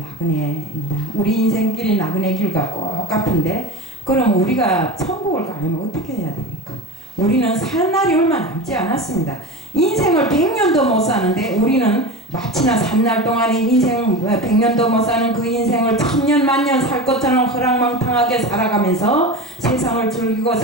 나그네입니다. 우리 인생길이 나그네 길과 똑같은데 그럼 우리가 천국을 가려면 어떻게 해야 됩니까? 우리는 살 날이 얼마 남지 않았습니다. 인생을 100년도 못 사는데 우리는 마치나 산 날 동안에 인생 100년도 못 사는 그 인생을 1000년 만년 살 것처럼 허랑망탕하게 살아가면서 세상을 즐기고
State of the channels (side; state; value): both; normal; correlation 0.26